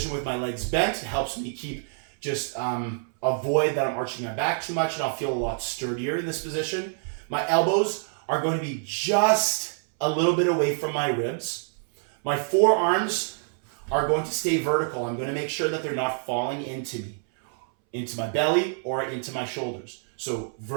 with my legs bent. It helps me keep avoid that I'm arching my back too much, and I'll feel a lot sturdier in this position. My elbows are going to be just a little bit away from my ribs. My forearms are going to stay vertical. I'm going to make sure that they're not falling into me, into my belly or into my shoulders. So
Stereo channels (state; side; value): silent; left; 60 dB below the other